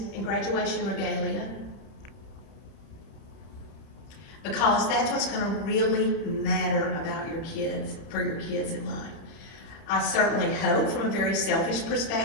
and graduation regalia, because that's what's going to really matter about your kids, for your kids in life. I certainly hope, from a very selfish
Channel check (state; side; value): late; right; 30 ms